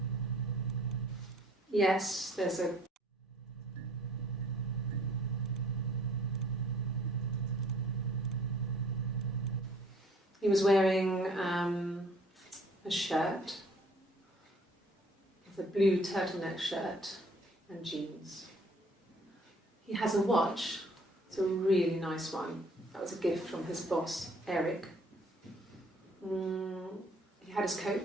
Yes, there's a... He was wearing a shirt, it's a blue turtleneck shirt and jeans. He has a watch, it's a really nice one. That was a gift from his boss, Eric. He had his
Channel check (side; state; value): both; normal; correlation 0.57